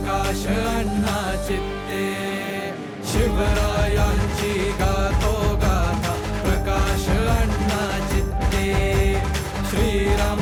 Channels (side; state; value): both; identical; correlation 1.00